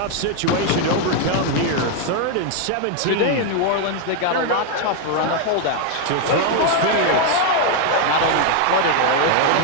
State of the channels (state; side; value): different; both; correlation 0.00